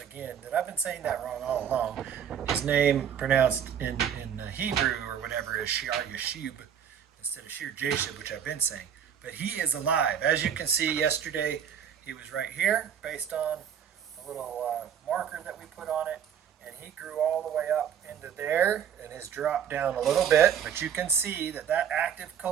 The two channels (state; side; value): quieter; left; 8.4 dB